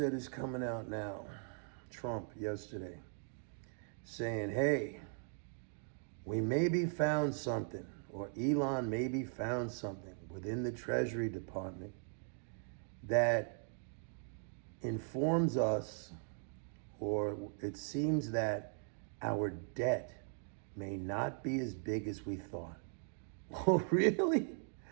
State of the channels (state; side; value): silent; left; 51 dB below the other